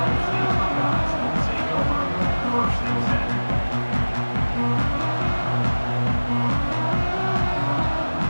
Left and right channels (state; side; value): inverted; both; correlation -1.00